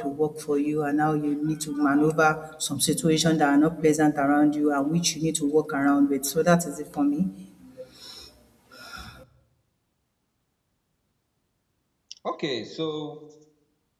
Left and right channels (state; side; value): identical; both; correlation 1.00